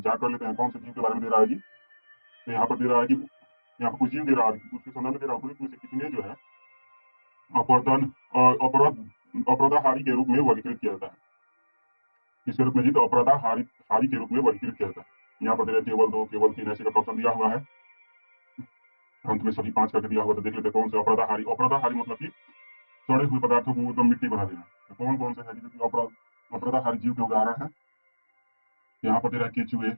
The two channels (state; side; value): inverted; both; correlation -1.00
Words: कर लेते हैं कौन से जीव के बारे में दे रहा है जी? तो यहाँ पर दे रहा है कि यहाँ पर कुछ जीव दे रहा है, उसके संदर्भ में दे रहा है उपयुक्त में से कितने जो है अपवर्तन अपराधाहारी के रूप में वर्गीकृत किया जाता है? किसके रूप में जी? तो अपराधाहारी हारी के रूप में वर्गीकृत किया जाता है। यहाँ पर दे रहा है केवल 2, केवल 3 ऐसे का ऑप्शन दिया हुआ है। अंत में सभी 5 करके दिया हुआ, तो देख लेते हैं कौन से अपराधाहारी। अपराधाहारी मतलब कि सड़े हुए पदार्थों को एकदम मिट्टी बना देना। तो कौन कौन से है जी जो अपराधाहारी जीव के उदाहरण है? यहाँ पर दे रहा है केचुए,